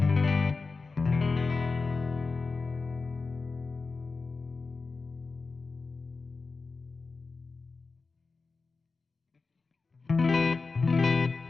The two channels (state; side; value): quieter; right; 4.2 dB